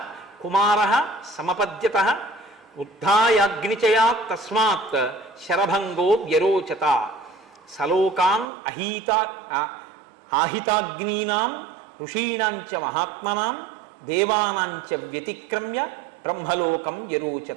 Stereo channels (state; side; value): drops out; left; at 8.5 s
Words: కుమార సమపద్యత ఉద్ధాయాగ్నిచయా తస్మాత్ శరభంగో వ్యరోచత సలోకాన్ ఆహితాగ్నీనాం ఋషీణాంచ మహాత్మనాం దేవానాంచ వ్యతిక్రమ్య బ్రహ్మలోకం